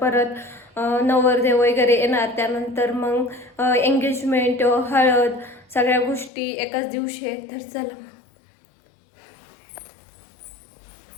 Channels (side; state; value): right; drops out; at 6.3 s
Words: परत नवरदेव वगैरे येणार, त्यानंतर मग एंगेजमेंट, हळद, सगळ्या गोष्टी एकाच दिवशी आहेत। तर चला